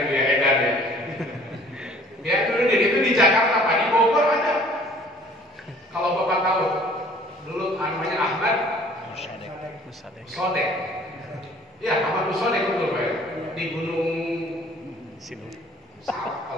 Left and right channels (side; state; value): both; normal; correlation 0.53